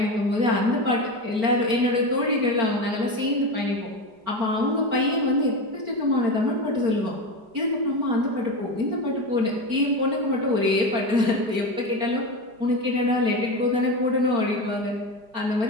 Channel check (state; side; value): late; left; 4.4 ms